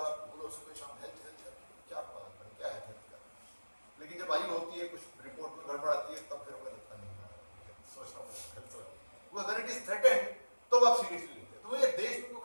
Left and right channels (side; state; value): both; inverted; correlation -1.00